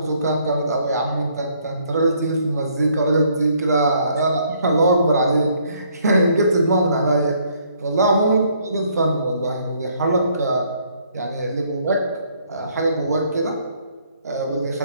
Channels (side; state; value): both; inverted; correlation -0.67